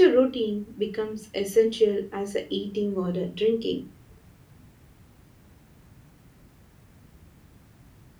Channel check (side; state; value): both; identical; correlation 1.00